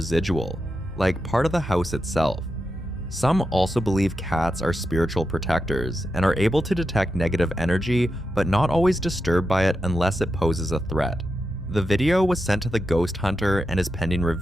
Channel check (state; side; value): normal; both; correlation 0.88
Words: like part of the house itself. Some also believe cats are spiritual protectors and are able to detect negative energy, but not always disturbed by it unless it poses a threat. The video was sent to the ghost hunter and is pending